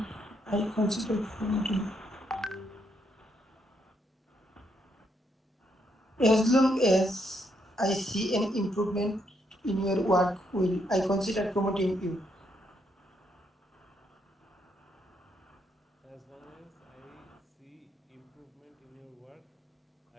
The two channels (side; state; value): both; normal; correlation 0.76